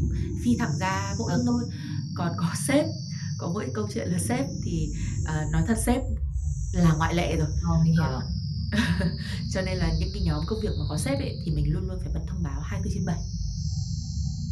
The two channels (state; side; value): identical; both; correlation 1.00